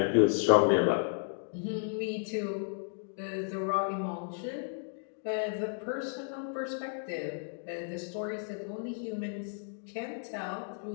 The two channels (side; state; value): right; silent; digital silence